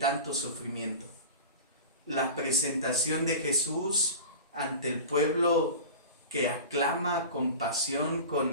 sufrimiento. La presentación de Jesús ante el pueblo que aclama con pasión,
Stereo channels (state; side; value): inverted; both; correlation -0.33